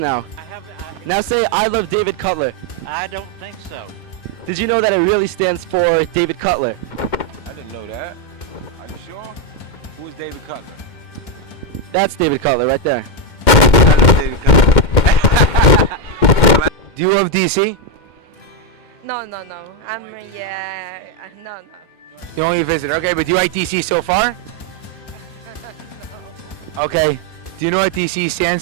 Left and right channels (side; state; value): right; late; 2.2 ms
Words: Now say, I love David Cutler. I don't think so. Did you know that it really stands for David Cutler? I didn't know that. Are you sure? Who is David Cutler? That's David Cutler right there. David Cutler. Do you love DC? No. No. You only visitor. Okay, but do you like DC so far? Okay. Do you know what DC